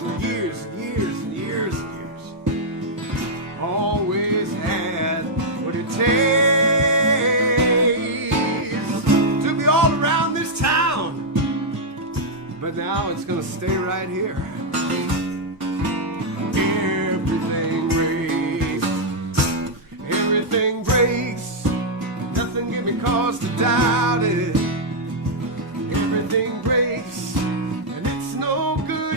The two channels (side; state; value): both; normal; correlation -0.04